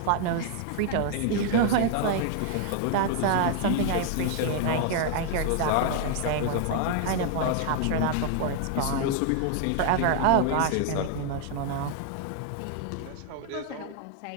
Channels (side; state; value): both; different; correlation 0.00